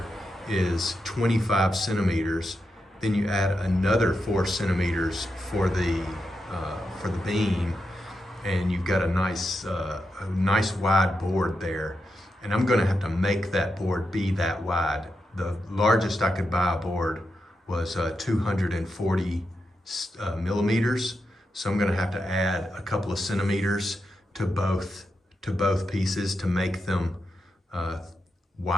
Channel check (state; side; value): normal; both; correlation 0.86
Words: is 25 centimeters. Then you add another 4 centimeters for the beam, and you've got a nice wide board there. And I'm gonna have to make that board be that wide. The largest I could buy a board was 240 millimeters. So I'm gonna have to add a couple of centimeters to both pieces to make them